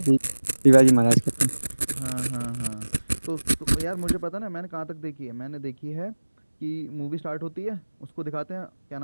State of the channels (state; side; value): inverted; both; correlation -1.00